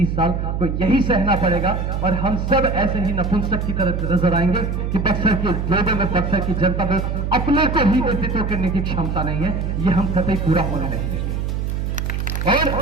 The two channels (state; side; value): noise; right; hum, 1 dB below the sound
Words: साल को यही सहना पड़ेगा, और हम सब ऐसे ही नपुंसक की तरह नजर आएंगे कि बक्सर के लोगों में, बक्सर की जनता में अपने को ही नेतृत्व करने की क्षमता नहीं है। ये हम कतई पूरा होने नहीं देंगे।